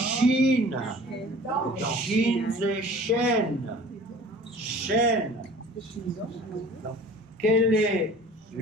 Shin, c'est chaîne. Chaîne. Quel est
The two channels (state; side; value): normal; both; correlation 0.45